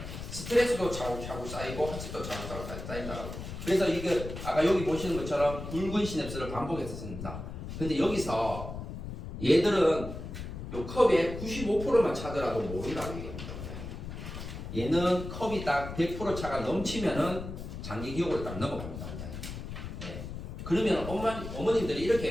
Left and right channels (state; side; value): noise; left; rumble, 8 dB below the sound